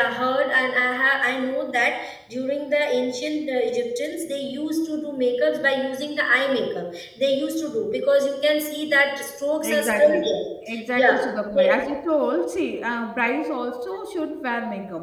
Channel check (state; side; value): identical; both; correlation 1.00